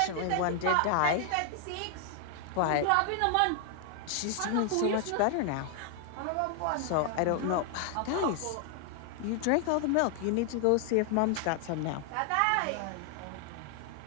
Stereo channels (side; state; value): both; different; correlation 0.00